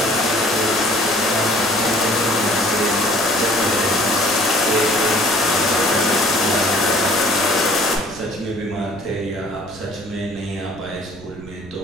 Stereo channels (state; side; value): noise; right; rumble, 19 dB below the sound